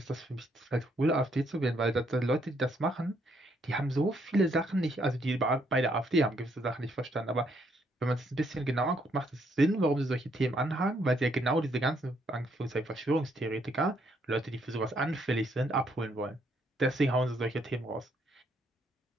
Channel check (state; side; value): normal; both; correlation 0.72